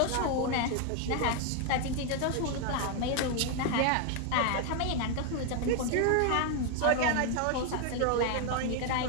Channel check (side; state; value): both; different; correlation 0.00